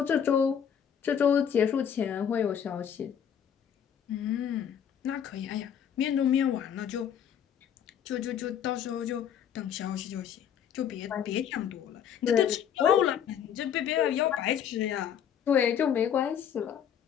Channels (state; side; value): quieter; right; 8.7 dB